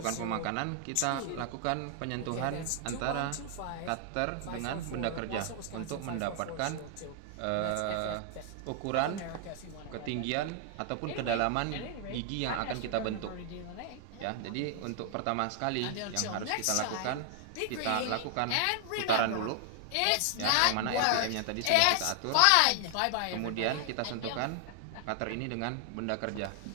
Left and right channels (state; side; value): different; both; correlation 0.00